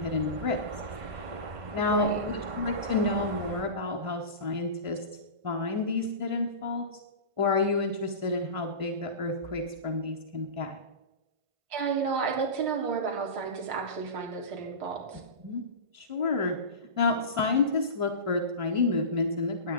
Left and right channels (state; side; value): late; left; 1.5 ms